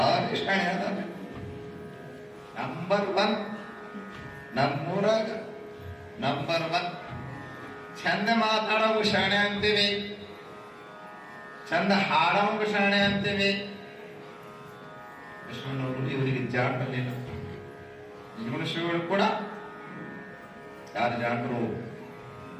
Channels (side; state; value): both; identical; correlation 1.00